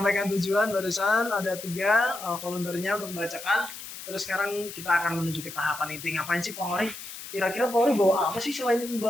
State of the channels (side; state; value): left; noise; hiss, 12 dB below the sound